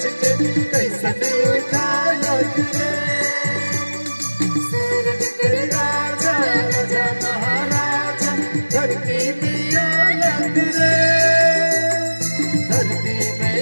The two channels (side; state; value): both; inverted; correlation -1.00